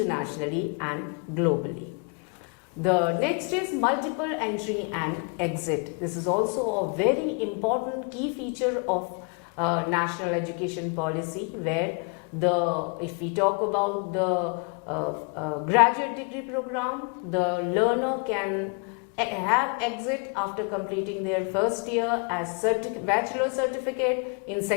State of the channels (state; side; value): quieter; right; 36.9 dB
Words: and globally. The next is multiple entry and exit. This is also a very important key feature of national education policy, where if we talk about the graduate degree program, the learner can have exit after completing their first year as bachelor certificate, in